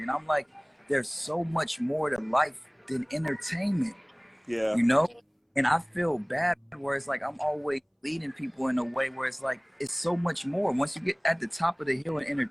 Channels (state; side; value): identical; both; correlation 1.00